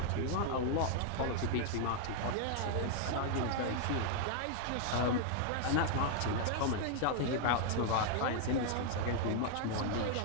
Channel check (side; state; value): both; different; correlation 0.00